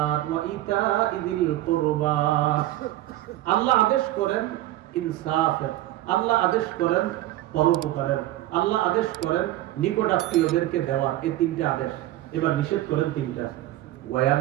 ওয়া ইতা'i যিল কুরবা। আল্লাহ আদেশ করেন ইনসাফের, আল্লাহ আদেশ করেন পরোপকারের, আল্লাহ আদেশ করেন নিকটাত্মীয়দেরকে দেওয়ার। এই তিনটা আদেশ। এবার নিষেধ করেন তিনটা। ওয়া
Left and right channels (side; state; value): left; quieter; 15.3 dB